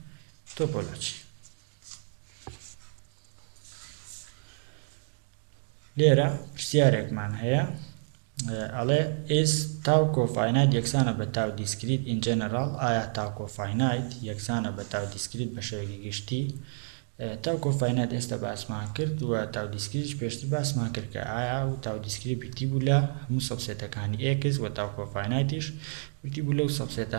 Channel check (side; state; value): left; silent; digital silence